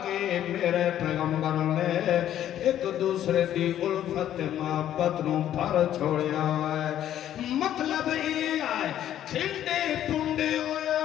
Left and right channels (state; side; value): quieter; right; 11.4 dB